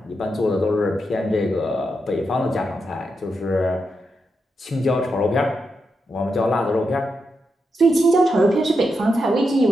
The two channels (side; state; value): both; normal; correlation 0.85